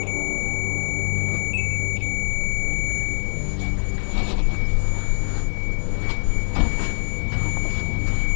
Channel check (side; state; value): right; silent; digital silence